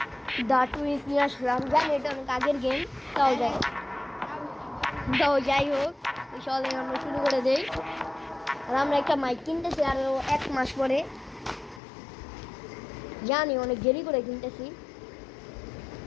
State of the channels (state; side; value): drops out; right; at 11.8 s